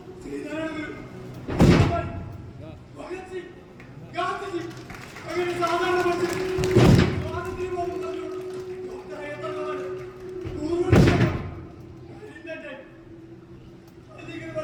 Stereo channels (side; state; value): both; identical; correlation 1.00